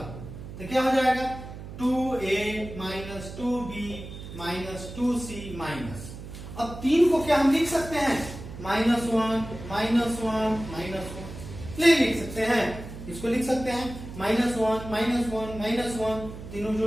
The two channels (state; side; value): noise; right; hum, 12 dB below the sound